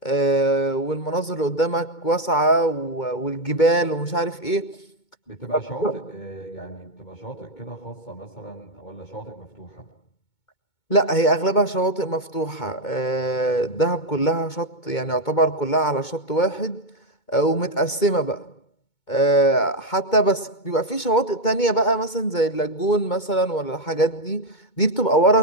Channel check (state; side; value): late; right; 2.2 ms